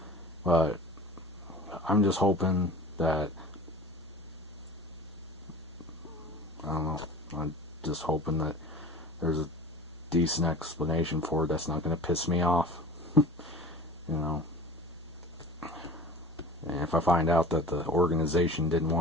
but I'm just hoping that, I'm just hoping that there's a decent explanation for it that's not going to piss me off. And if I find out that the organization didn't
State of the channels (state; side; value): normal; both; correlation 0.38